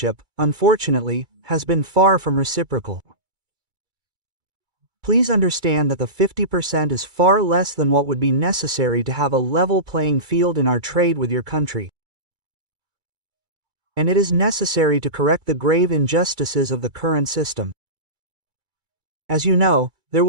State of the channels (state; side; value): late; left; 2.2 ms